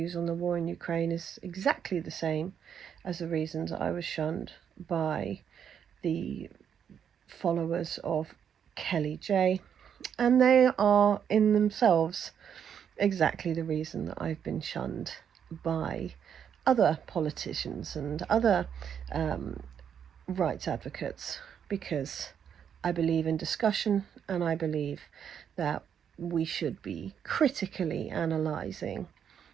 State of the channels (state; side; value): quieter; left; 8.2 dB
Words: on the war in Ukraine is exactly the same as the reasons I was shunned by the followers of Kelly J. And they are in themselves exactly the reason that I've been shunned by other politicians and other rights advocates, because I believe in discussion, and I believe that we should be critically analysing